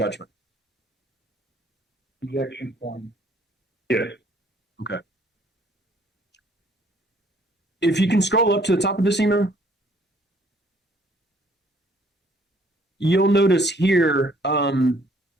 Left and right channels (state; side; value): normal; both; correlation 0.61